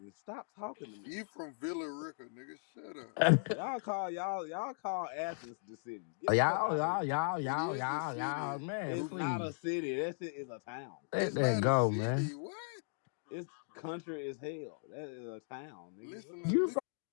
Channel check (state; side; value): silent; right; digital silence